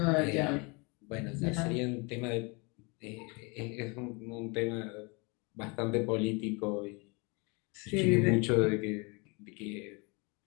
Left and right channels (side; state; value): right; quieter; 29.8 dB